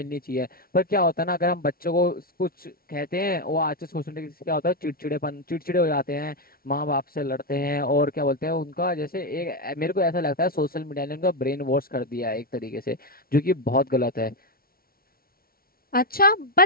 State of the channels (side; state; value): right; late; 0.43 ms